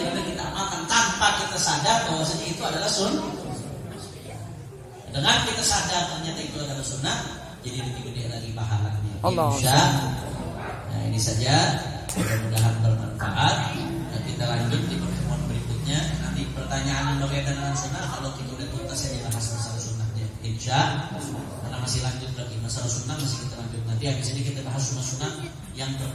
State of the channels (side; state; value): both; identical; correlation 1.00